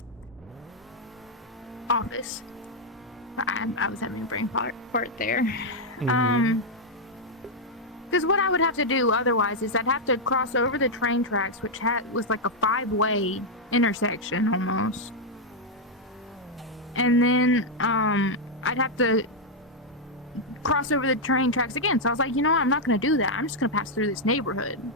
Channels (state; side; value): normal; both; correlation -0.02